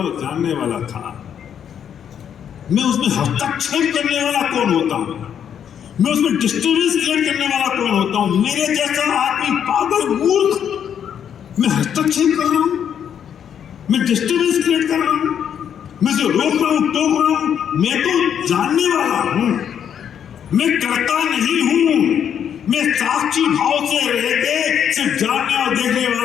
और जानने वाला था। मैं उसमें हस्तक्षेप करने वाला कौन होता हूं? मैं उसमें डिस्टर्बेंस क्रिएट करने वाला कौन होता हूं? मेरे जैसा आदमी, पागल, मूर्ख, मैं हस्तक्षेप कर रहा हूं, मैं डिस्टर्बेंस क्रिएट कर रहा हूं, मैं जो रोक रहा हूं, टोक रहा हूं। मैं तो जानने वाला हूं, मैं करता नहीं हूं। मैं साक्षी भाव से रह के सिर्फ जानने और देखने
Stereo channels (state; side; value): quieter; right; 8.7 dB